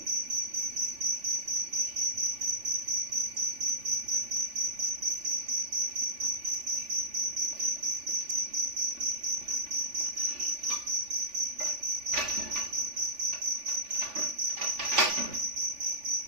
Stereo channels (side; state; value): left; late; 3.5 ms